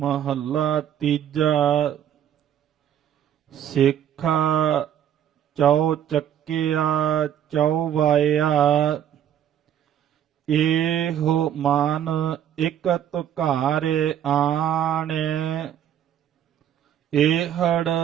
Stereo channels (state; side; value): quieter; left; 10.1 dB